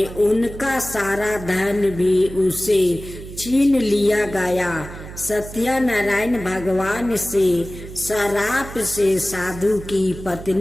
उनका सारा धन भी उसे छीन लिया गया। सत्यनारायण भगवान से श्राप से साधु की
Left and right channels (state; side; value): noise; right; hum, 13 dB below the sound